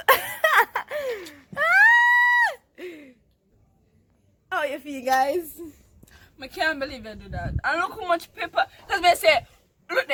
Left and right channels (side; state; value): both; identical; correlation 1.00